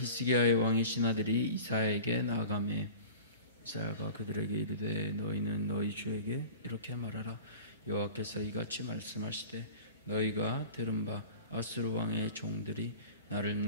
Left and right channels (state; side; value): inverted; both; correlation -0.38